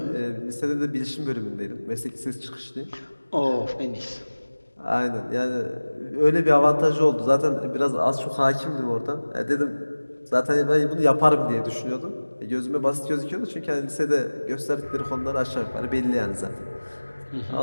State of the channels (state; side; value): inverted; both; correlation -1.00